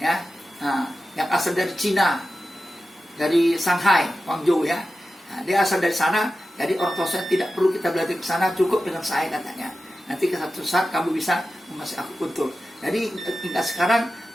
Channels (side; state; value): both; normal; correlation 0.93